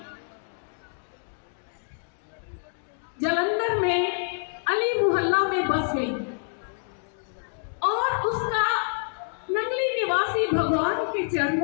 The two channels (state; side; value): silent; right; digital silence